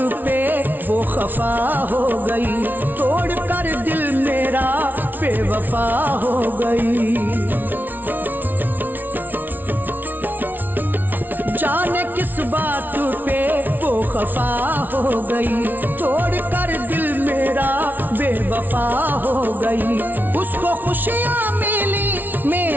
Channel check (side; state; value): left; late; 0.086 ms